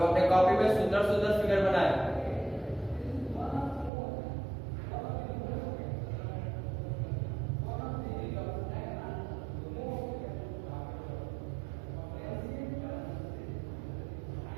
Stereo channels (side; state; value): left; drops out; at 3.9 s